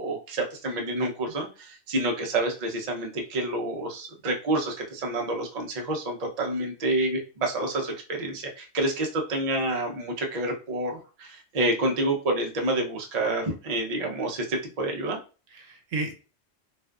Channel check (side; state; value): both; normal; correlation -0.12